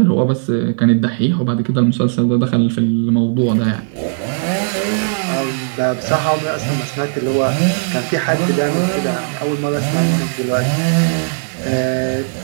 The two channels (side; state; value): left; silent; digital silence